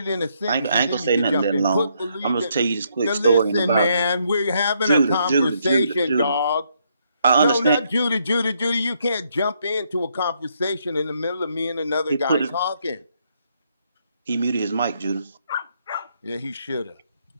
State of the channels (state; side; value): inverted; both; correlation -0.74